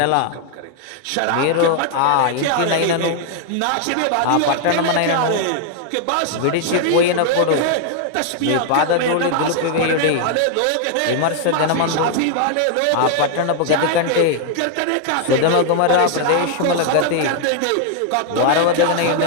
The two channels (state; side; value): different; both; correlation 0.00